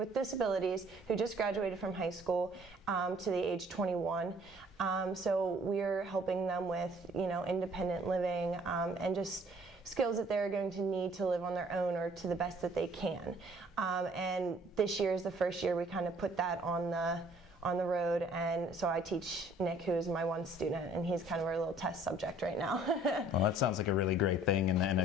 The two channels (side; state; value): both; normal; correlation 0.57